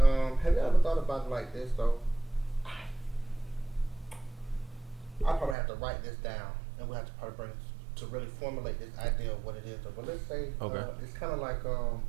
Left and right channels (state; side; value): drops out; left; at 5.6 s